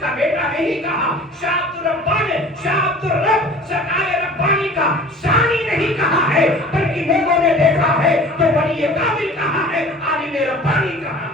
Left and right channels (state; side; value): normal; both; correlation 0.43